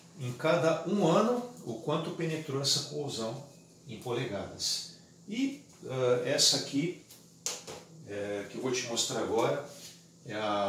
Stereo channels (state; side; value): identical; both; correlation 1.00